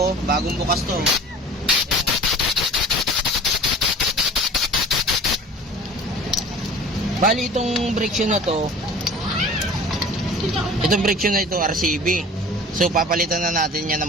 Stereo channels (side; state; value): both; normal; correlation 0.42